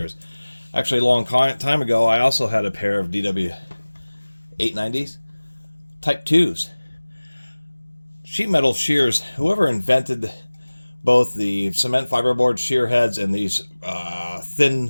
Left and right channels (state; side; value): inverted; both; correlation -1.00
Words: Actually, a long time ago, I also had a pair of DW890s, Type 2s. Sheet metal shears, whoever invented both the cement fiberboard shear heads and these